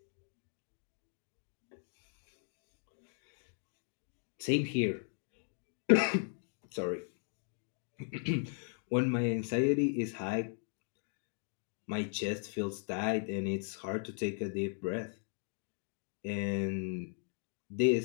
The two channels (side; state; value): right; silent; 53 dB below the other